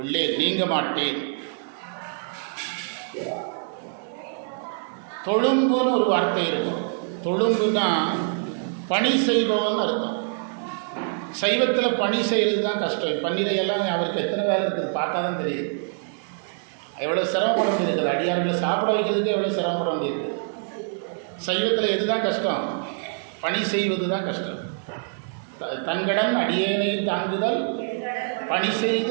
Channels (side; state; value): left; silent; 62 dB below the other